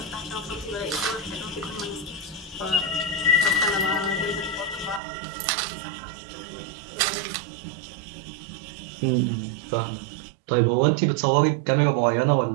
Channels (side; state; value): left; drops out; at 5.0 s